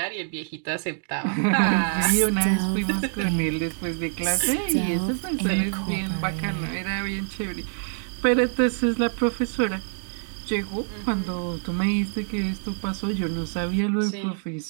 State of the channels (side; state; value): left; silent; digital silence